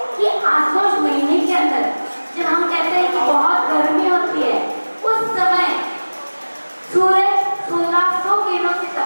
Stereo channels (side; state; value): both; inverted; correlation -1.00